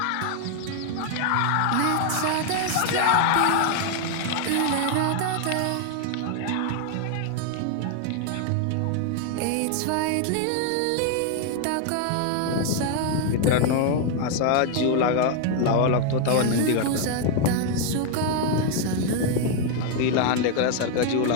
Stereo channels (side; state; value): both; different; correlation 0.00